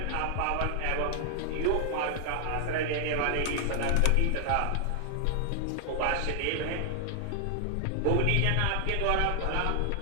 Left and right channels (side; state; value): both; different; correlation 0.00